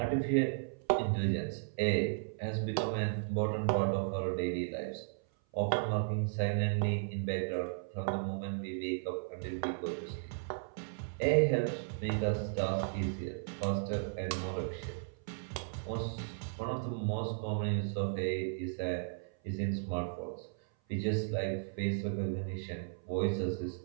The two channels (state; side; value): silent; left; 54 dB below the other